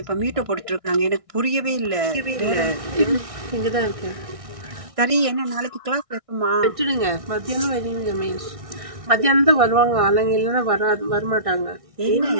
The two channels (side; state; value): left; late; 1.6 ms